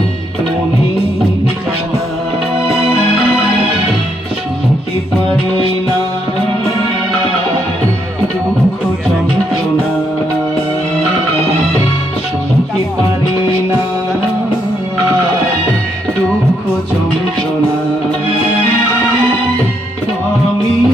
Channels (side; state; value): both; normal; correlation 0.76